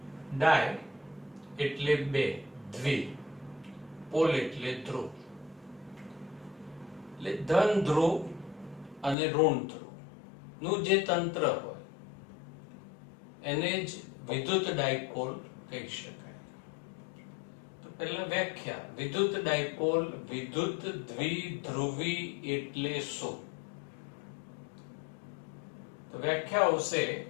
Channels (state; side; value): drops out; right; at 9.2 s